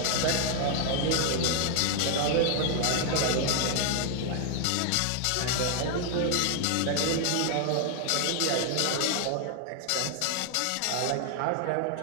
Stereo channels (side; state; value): both; different; correlation 0.00